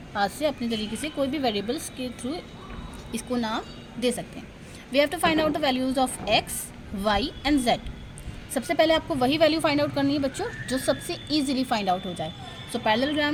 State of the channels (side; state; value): both; identical; correlation 1.00